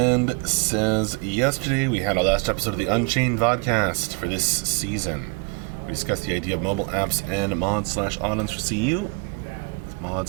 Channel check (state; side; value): quieter; left; 29.8 dB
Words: says, yesterday we had our last episode of the Unchained vodcast for this season. We discussed the idea of mobile apps and mods/add-ons for CU.